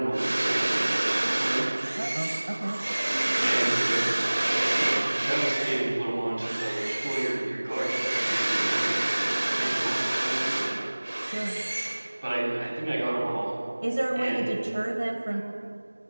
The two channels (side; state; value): both; inverted; correlation -1.00